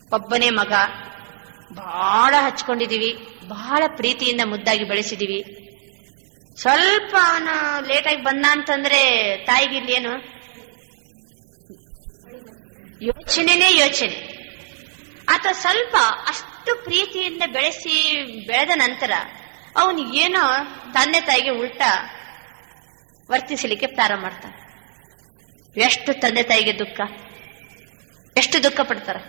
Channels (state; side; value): silent; left; digital silence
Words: ಒಬ್ಬನೇ ಮಗ, ಬಹಳ ಹಚ್ಕೊಂಡಿದೀವಿ, ಬಹಳ ಪ್ರೀತಿಯಿಂದ ಮುದ್ದಾಗಿ ಬೆಳೆಸಿದೀವಿ. ಸ್ವಲ್ಪ ಅವನು ಲೇಟಾಗಿ ಬಂದ ಅಂತಂದ್ರೆ ತಾಯಿಗೆ ಇಲ್ಲೇನು ಯೋಚನೆ, ಅಥವಾ ಸ್ವಲ್ಪ ಅಷ್ಟು ಪ್ರೀತಿಯಿಂದ ಬೆಳೆದ ನಂತರ ಅವನು ಏನೋ ತಂದೆ ತಾಯಿಗೆ ಉಲ್ಟಾ ವರ್ತಿಸಲಿಕ್ಕೆ ಪ್ರಾರಂಭ ಮಾಡ್ತಾನೆ. ಎಷ್ಟು ತಂದೆ ತಾಯಿಗೆ ದುಃಖ, ಎಷ್ಟು ದುಃಖ ಪಡ್ತಾರ.